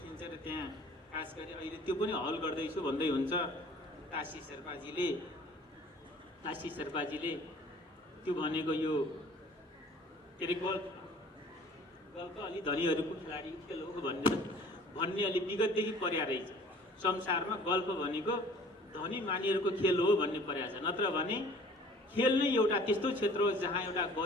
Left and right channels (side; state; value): both; normal; correlation 0.50